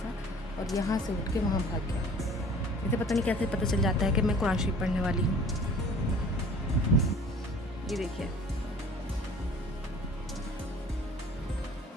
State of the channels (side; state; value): both; normal; correlation 0.49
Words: और यहाँ से उठ के वहाँ भाग गया। इसे पता नहीं कैसे पता चल जाता है कि मैं कुरान शरीफ पढ़ने वाली हूँ। ये देखिए,